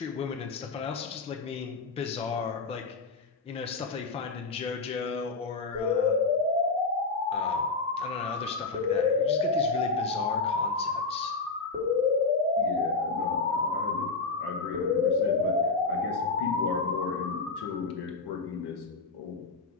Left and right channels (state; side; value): quieter; right; 4.0 dB